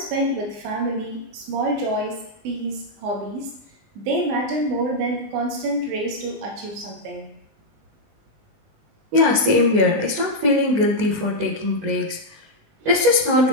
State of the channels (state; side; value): late; left; 19 ms